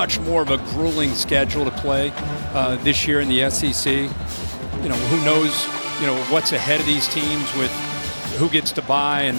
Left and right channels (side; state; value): both; inverted; correlation -1.00